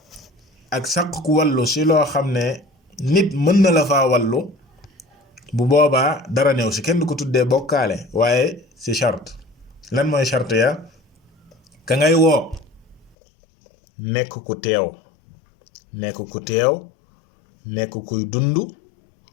ak sàkk wallu si loo xam ne nit mën na la faa wallu bu boobaa dara néew si kenn du ko tuddee bokkaale waaye si charte lan mooy charte ya ka ngay woo nekk ku teew nekk kuy dund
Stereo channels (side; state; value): right; drops out; at 13.2 s